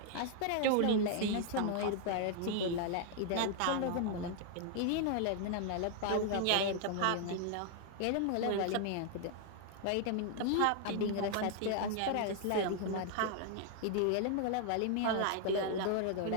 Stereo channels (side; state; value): both; different; correlation 0.00